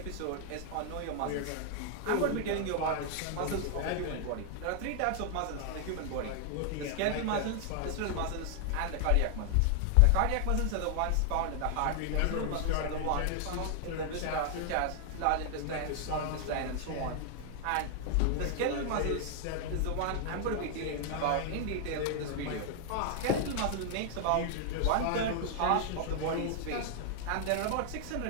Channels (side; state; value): both; different; correlation 0.00